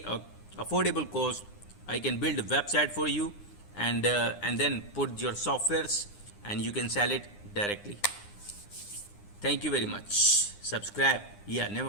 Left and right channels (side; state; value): right; late; 9.8 ms